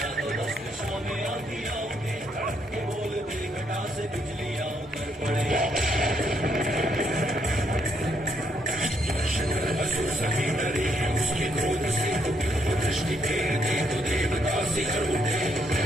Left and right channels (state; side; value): normal; both; correlation 0.74